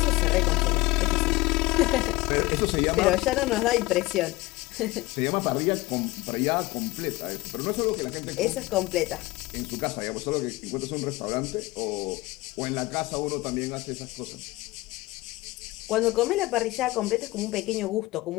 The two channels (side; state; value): right; quieter; 20.0 dB